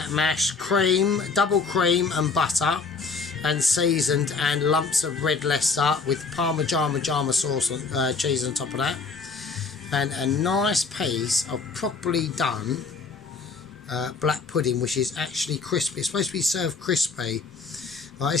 mash, cream, double cream and butter, and seasoned, and lumps of red Leicester with Parmigiano sauce on, cheese on top of that, and a nice piece of properly done black pudding, which is actually crispy. It's supposed to be served crispy. Right,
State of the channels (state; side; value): quieter; right; 4.5 dB